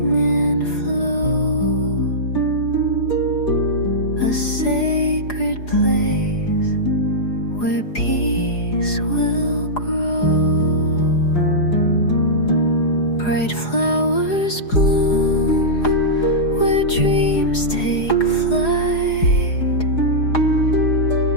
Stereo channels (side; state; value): right; late; 4.8 ms